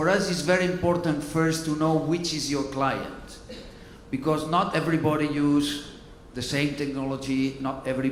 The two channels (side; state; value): both; identical; correlation 1.00